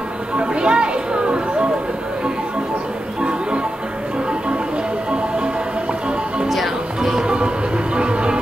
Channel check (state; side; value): normal; both; correlation 0.90